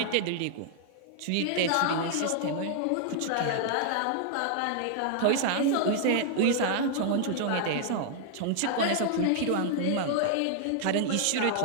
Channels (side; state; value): both; different; correlation -0.01